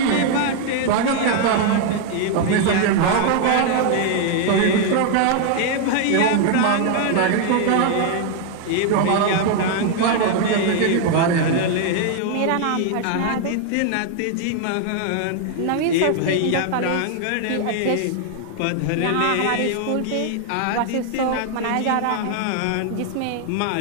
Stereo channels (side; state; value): both; different; correlation 0.00